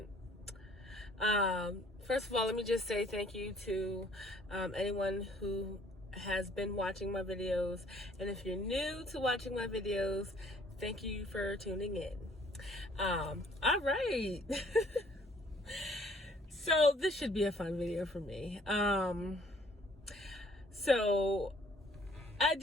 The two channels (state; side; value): normal; both; correlation 0.59